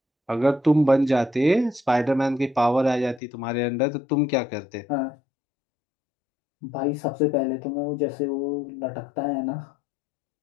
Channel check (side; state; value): right; drops out; at 3.2 s